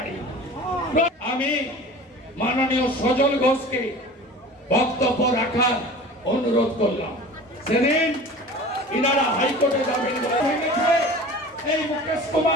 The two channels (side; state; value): both; normal; correlation 0.39